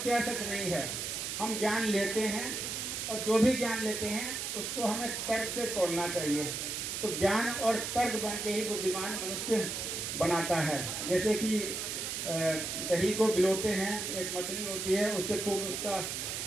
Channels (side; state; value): right; noise; hiss, 3 dB below the sound